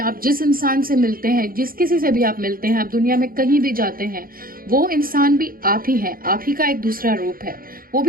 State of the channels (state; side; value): late; left; 0.42 ms